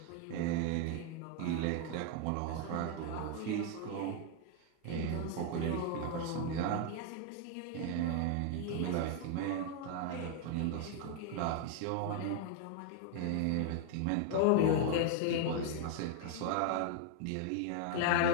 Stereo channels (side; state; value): both; different; correlation 0.00